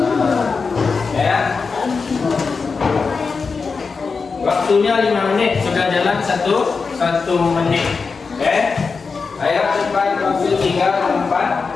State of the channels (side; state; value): right; quieter; 4.8 dB